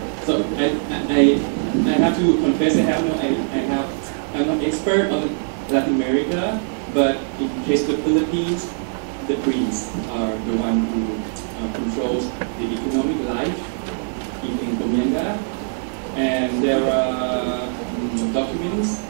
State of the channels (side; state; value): left; silent; 64 dB below the other